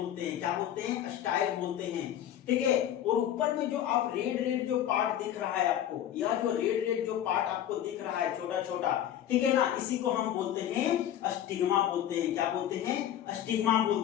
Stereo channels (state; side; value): quieter; right; 11.0 dB